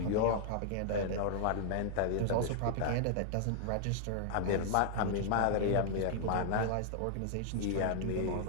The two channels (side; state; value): both; different; correlation -0.01